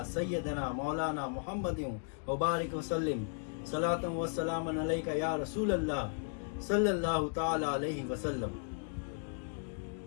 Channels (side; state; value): right; silent; 54 dB below the other